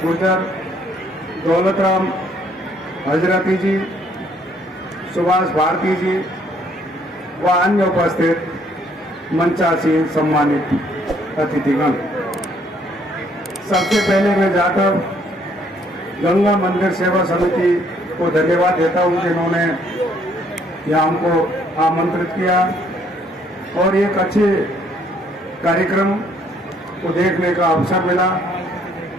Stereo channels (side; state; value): both; normal; correlation 0.65